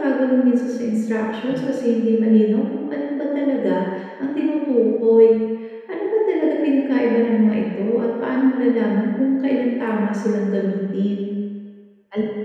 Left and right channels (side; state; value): both; identical; correlation 1.00